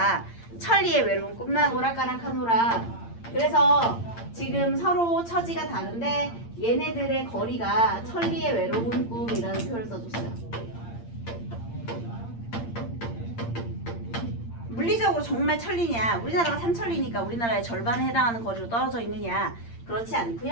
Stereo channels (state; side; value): late; right; 8.7 ms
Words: 천리의 외로운 꿈만 오락가락하노라. 그래서 지금 서로 처지가 다른데 얘네들의 거리가 천리의 외로운 꿈이라는 표현을 써줬어요. 물리적으로 정말 천리냐? 우리나라가 삼천리니까 우리나라의 절반에 해당하는 거리로 떨어져 있느냐? 그렇지